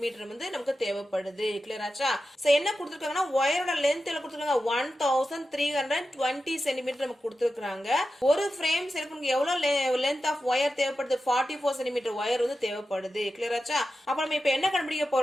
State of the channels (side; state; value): both; normal; correlation 0.91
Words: வந்து நமக்கு தேவைப்படுது. கிளியர் ஆச்சா? சோ என்ன கொடுத்திருக்காங்கன்னா வயரோட லென்த் எவ்வளவு கொடுத்திருக்காங்க 1320 சென்டிமீட்டர் நமக்கு கொடுத்திருக்காங்க. ஒரு ஃப்ரேம் செய்யறதுக்கு நமக்கு எவ்வளவு லென்த் ஆஃப் வயர் தேவைப்படுது 44 சென்டிமீட்டர் வயர் வந்து தேவைப்படுது. கிளியர் ஆச்சா? அப்ப நம்ம இப்ப என்ன கண்டுபிடிக்க